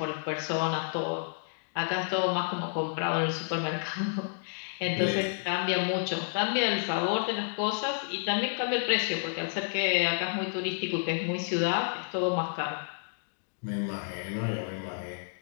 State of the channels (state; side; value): silent; right; digital silence